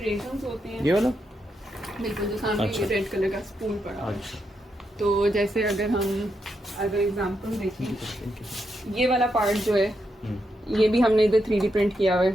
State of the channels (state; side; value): normal; both; correlation 0.82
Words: होते हैं, ये वाला? बिल्कुल जो सामने अच्छा। ये रेड कलर का स्पूल पड़ा हुआ है। अच्छा, तो जैसे अगर हम अगर एग्जांपल देखें, ये वाला पार्ट जो है ये भी हमने इधर 3D प्रिंट किया हुआ